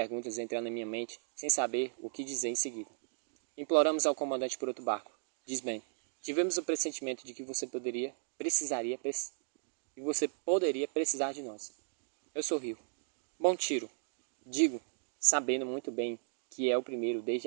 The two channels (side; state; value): left; silent; digital silence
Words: entrando na minha mente, sem saber o que dizer em seguida. Imploramos ao comandante por outro barco, diz Ben. Tivemos o pressentimento de que você poderia precisar de nós. Eu sorrio. Bom tiro. Digo, sabendo muito bem que é o primeiro desde